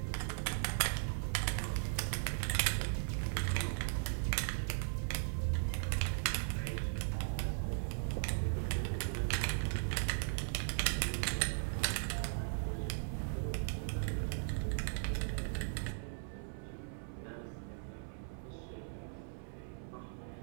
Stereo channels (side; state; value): left; silent; 52 dB below the other